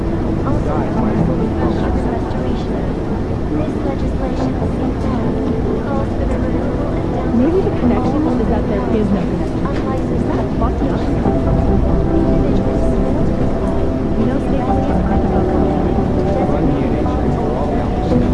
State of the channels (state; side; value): identical; both; correlation 1.00